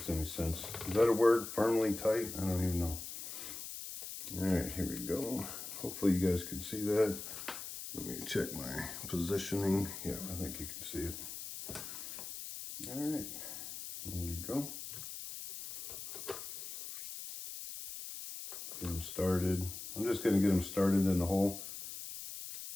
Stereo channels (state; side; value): noise; left; hiss, 8 dB below the sound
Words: any sense. Is that a word? Firmly tight? I don't even know. All right, here we go. Hopefully you guys can see that. Let me check my positioning. Yeah, I think you can see it. All right, here we go. Get them started. I'm just going to get them started in the hole.